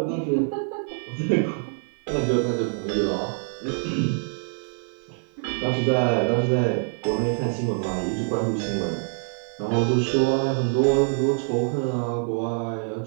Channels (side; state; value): left; silent; 56 dB below the other